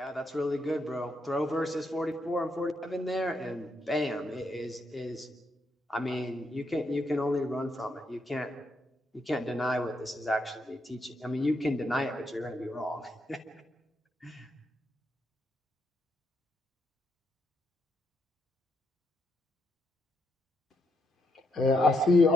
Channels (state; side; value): normal; both; correlation 0.78